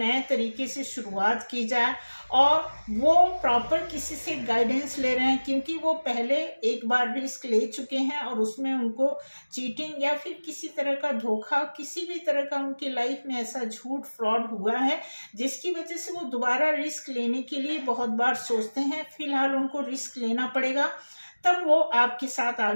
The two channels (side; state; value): both; inverted; correlation -1.00